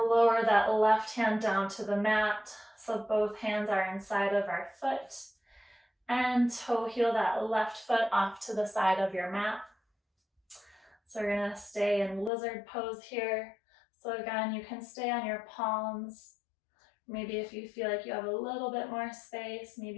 that left hand down to the mat so both hands are inside of our foot. And toe heel that left foot off to the side of your mat. So we're going to stay in lizard pose here. So again, you can stay on your palms. Maybe if you feel like you have a little bit more space,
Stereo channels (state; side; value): drops out; right; at 12.3 s